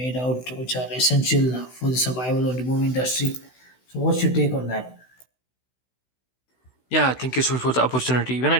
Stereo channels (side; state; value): right; late; 16 ms